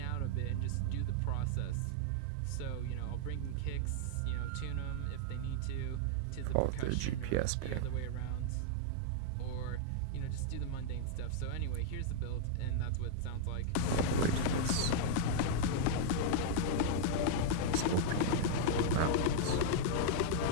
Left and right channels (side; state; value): both; different; correlation -0.01